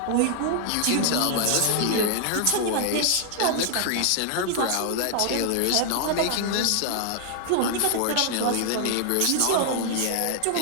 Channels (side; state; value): both; different; correlation 0.00